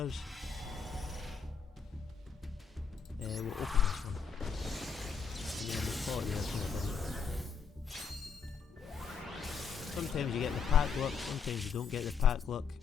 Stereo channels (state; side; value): quieter; right; 6.0 dB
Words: We'll open this one. And then we'll call it there for the video. Sometimes you get the pack luck, sometimes you don't get the pack luck.